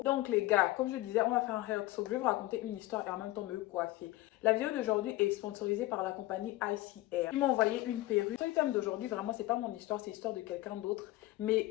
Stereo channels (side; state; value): right; quieter; 18.0 dB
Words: Donc les gars, comme je disais, on va faire un hair talk, je vais vous raconter une histoire et en même temps me coiffer. La vidéo d'aujourd'hui est sponsorisée par la compagnie ICR. Ils m'ont envoyé une perruque. Le thème d'aujourd'hui, vraiment, c'est pas mon histoire, c'est l'histoire de quelqu'un d'autre.